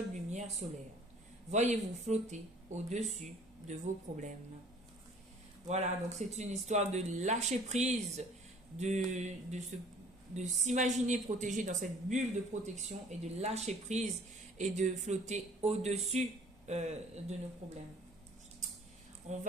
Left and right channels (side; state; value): both; normal; correlation 0.52